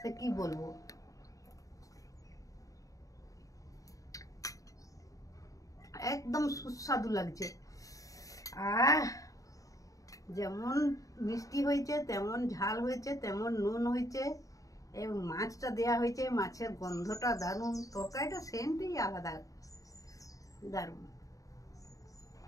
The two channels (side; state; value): right; late; 0.16 ms